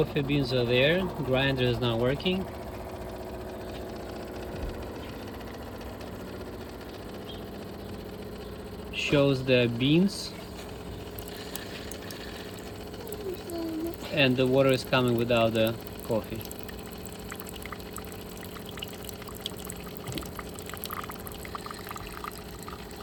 beans are there. Grinder is not working. Shows the beans, and the water is coming without the coffee.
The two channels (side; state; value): both; identical; correlation 1.00